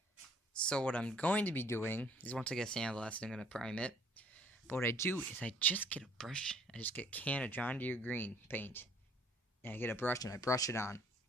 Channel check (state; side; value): normal; both; correlation 0.59